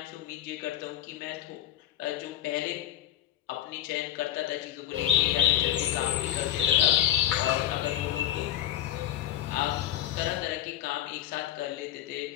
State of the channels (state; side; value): quieter; right; 12.3 dB